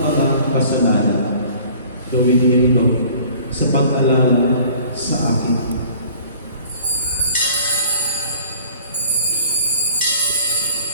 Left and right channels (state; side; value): inverted; both; correlation -0.51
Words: kasalanan. Gawin niyo ito sa pag-alala sa akin."